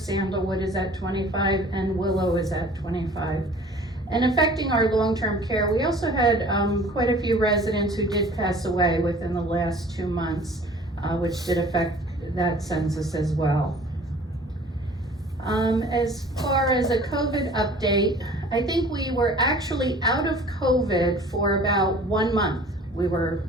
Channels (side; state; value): both; normal; correlation 0.48